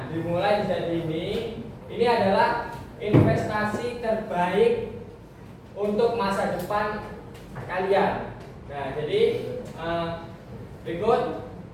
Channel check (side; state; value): both; identical; correlation 1.00